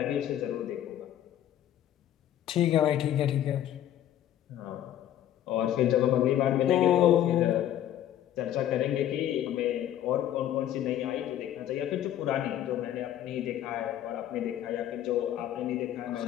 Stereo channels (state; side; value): quieter; right; 11.6 dB